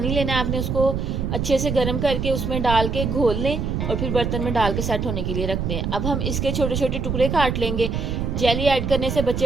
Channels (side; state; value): right; noise; rumble, 1 dB below the sound